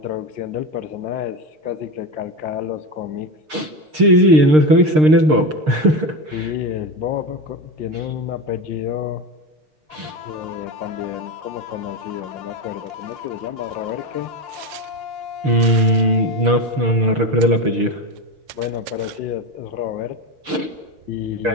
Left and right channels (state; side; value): late; left; 6.6 ms